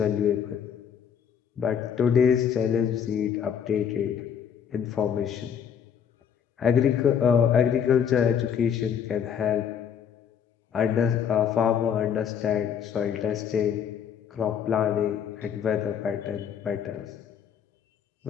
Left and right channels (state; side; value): quieter; right; 8.0 dB